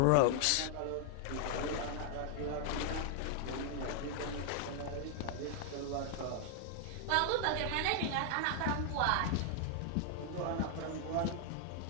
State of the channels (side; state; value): both; different; correlation 0.00